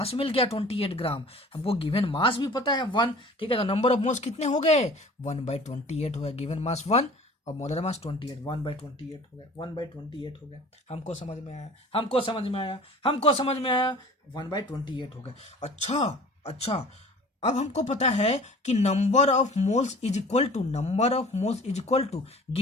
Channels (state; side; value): normal; both; correlation 0.45